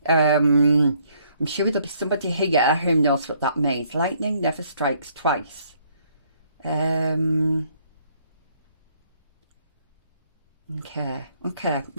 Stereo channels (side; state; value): both; inverted; correlation -0.66